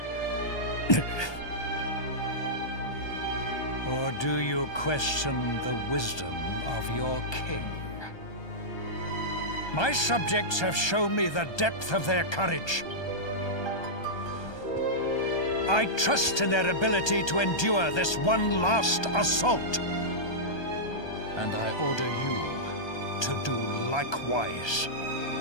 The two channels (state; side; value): late; right; 1.2 ms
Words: Or do you question the wisdom of your king? My subjects have shown me the depth of their courage. I trust in their ability to endure this one last assault. And I order you to do likewise.